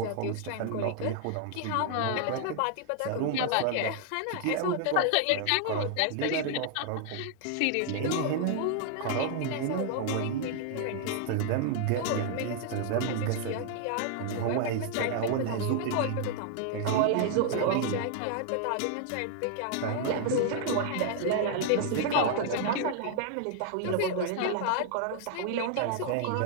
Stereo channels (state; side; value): different; both; correlation 0.00